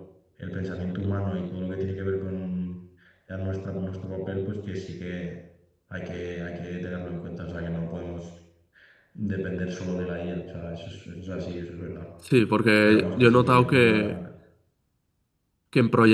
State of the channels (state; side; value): identical; both; correlation 1.00